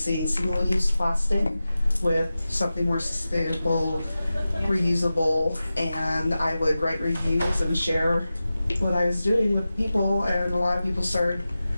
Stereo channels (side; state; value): both; inverted; correlation -0.95